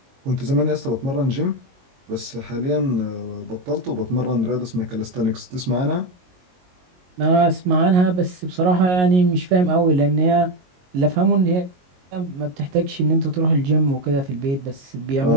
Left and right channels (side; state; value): left; late; 22 ms